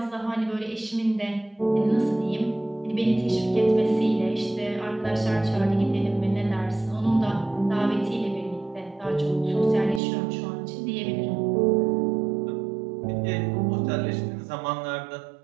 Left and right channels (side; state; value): left; drops out; at 10.0 s